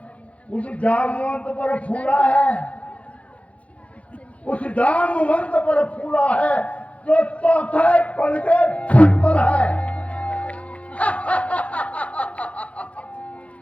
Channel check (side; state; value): right; late; 0.064 ms